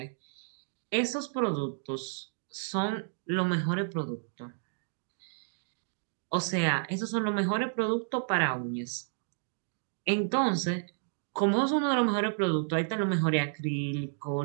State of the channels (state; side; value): silent; left; digital silence